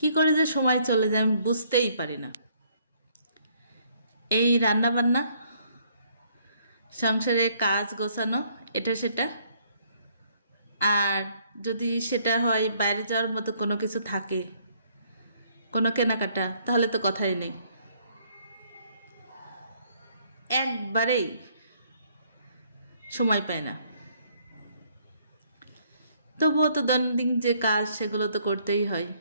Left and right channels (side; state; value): both; inverted; correlation -0.66